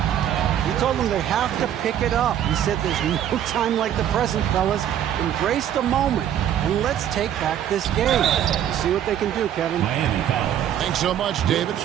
He told them they have to pick it up. He said there's no time like the present, fellas. Embrace the moment, and let's take back this game. See what they can do, Kevin. Thanks so much, David.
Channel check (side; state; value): left; quieter; 10.4 dB